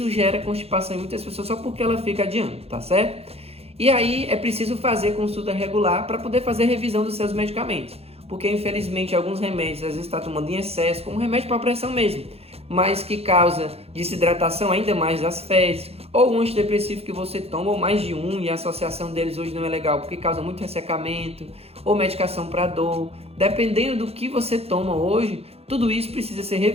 gera constipação em muitas pessoas só porque ela fica adiando, tá certo? E aí é preciso fazer consulta regular para poder fazer revisão dos seus medicamentos, porque infelizmente alguns remédios às vezes está tomando em excesso, como remédio para pressão mesmo, mas que causa desidratação ainda mais das fezes, ou um antidepressivo que você toma, ou mais de um, e a associação deles hoje não é legal, porque causa muito ressecamento, ou medicação para dor. Dependendo do que você toma hoje, tudo isso precisa ser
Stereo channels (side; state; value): left; late; 0.29 ms